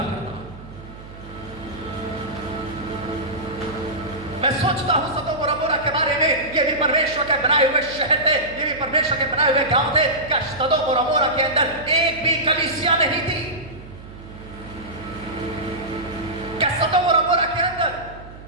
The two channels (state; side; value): noise; right; hum, 16 dB below the sound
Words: करता। मैं सोचता हूं सदोम और अमोरा के बारे में, ये भी परमेश्वर के बनाए हुए शहर थे, ये भी परमेश्वर के बनाए हुए गांव थे। क्या सदोम और अमोरा के अंदर एक भी कलीसिया नहीं थी? क्या सदोम और अमोरा के अंदर